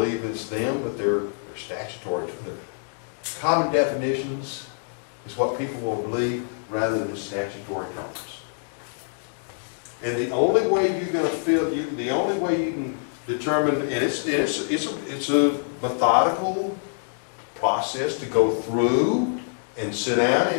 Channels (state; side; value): silent; right; digital silence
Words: it's them, but they're statutory. They're common definitions is what people will believe rather than statutory terms. And the only way you're going to the only way you can determine, and it's a methodical process to go through and sit down.